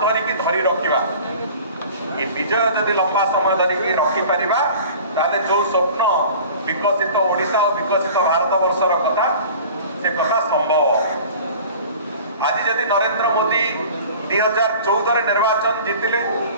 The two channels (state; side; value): inverted; both; correlation -0.43